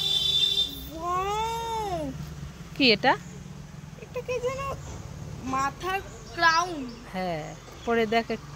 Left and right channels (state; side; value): identical; both; correlation 1.00